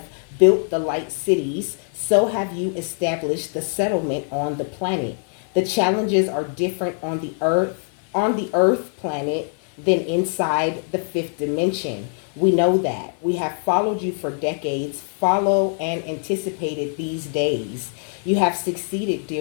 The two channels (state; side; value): silent; right; 55 dB below the other